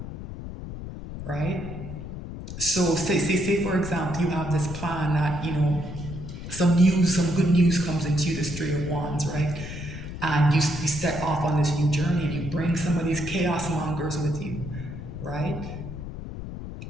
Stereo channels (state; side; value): noise; left; rumble, 9 dB below the sound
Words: right? So say for example, you have this plan that, some good news comes into you, this Three of Wands, right? And you set off on this new journey and you bring some of these chaos mongers with you, right?